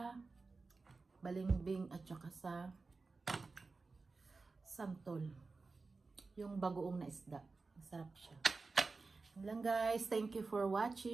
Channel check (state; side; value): quieter; left; 4.0 dB